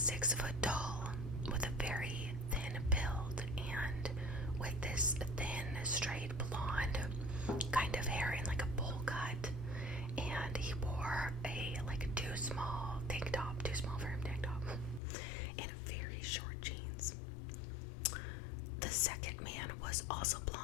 foot tall with a very thin build and with this thin, straight blonde kind of hair in like a bowl cut, and he wore a too small for him tank top, and very short jeans. The second man was also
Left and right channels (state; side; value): drops out; right; at 15.0 s